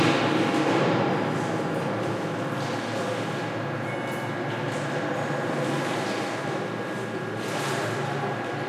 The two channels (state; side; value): identical; both; correlation 1.00